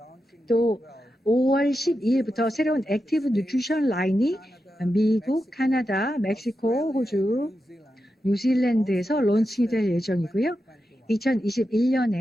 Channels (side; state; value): both; normal; correlation 0.89